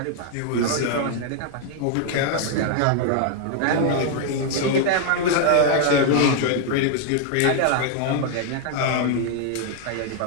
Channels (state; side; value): different; both; correlation 0.00